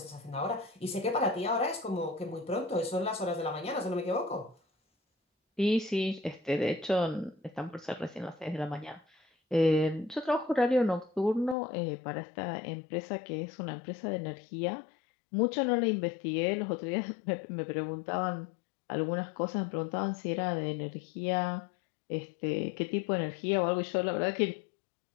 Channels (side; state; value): right; drops out; at 11.6 s